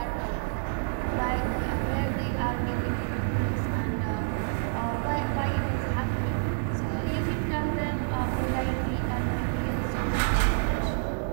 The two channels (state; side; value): silent; left; digital silence